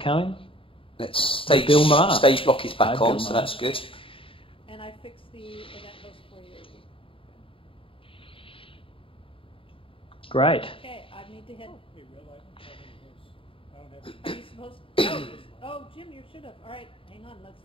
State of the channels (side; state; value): right; late; 0.26 ms